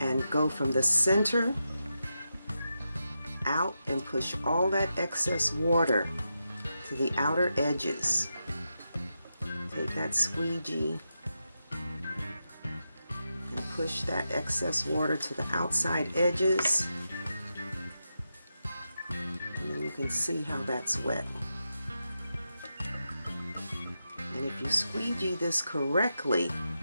go from the center out and push all that excess water to the outer edges. Take that squeegee and push that excess water to the outside edges, and then you can see how that's wet. And if you squeegee this correctly,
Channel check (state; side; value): inverted; both; correlation -0.88